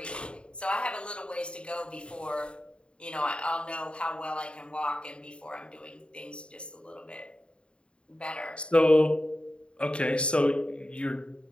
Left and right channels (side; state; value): right; late; 0.055 ms